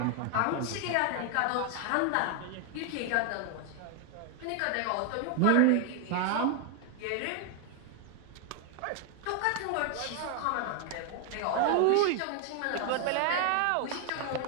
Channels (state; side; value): different; both; correlation 0.00